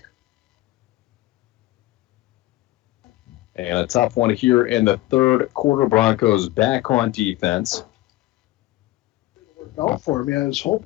And a tough one here in the third quarter. Broncos back on defense. Out for me. I was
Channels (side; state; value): right; quieter; 17.1 dB